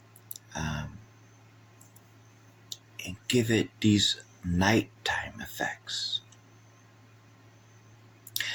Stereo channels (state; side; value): identical; both; correlation 1.00